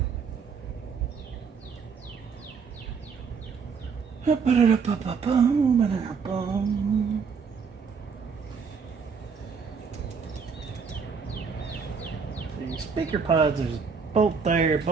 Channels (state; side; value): quieter; left; 5.7 dB